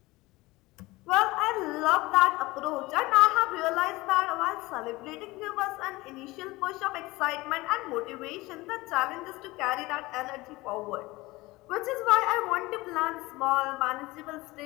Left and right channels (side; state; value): right; quieter; 20.8 dB